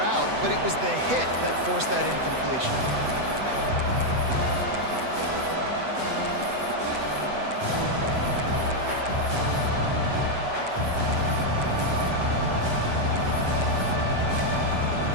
but it was the hit that forced that incompletion.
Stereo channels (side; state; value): left; late; 8.0 ms